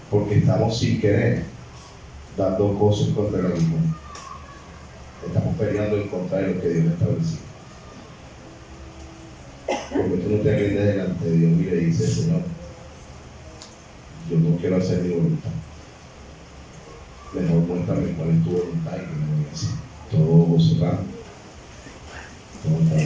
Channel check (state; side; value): identical; both; correlation 1.00